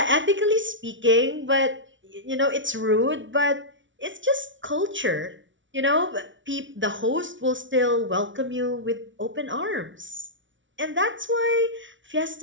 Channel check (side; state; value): left; late; 0.56 ms